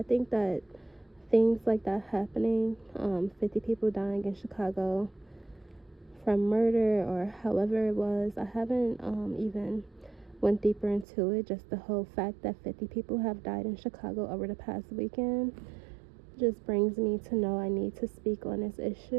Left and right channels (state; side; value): drops out; left; at 11.1 s